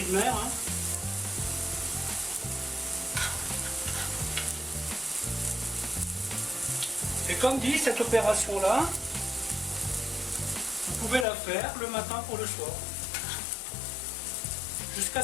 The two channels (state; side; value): drops out; right; at 11.2 s